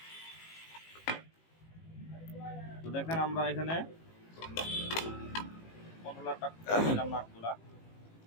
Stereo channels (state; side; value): late; right; 18 ms